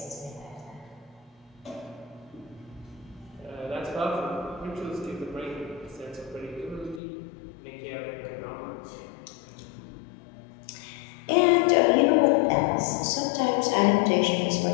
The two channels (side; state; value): right; drops out; at 7.0 s